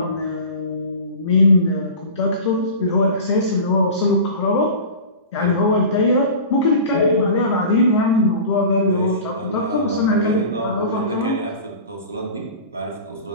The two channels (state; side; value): inverted; both; correlation -0.36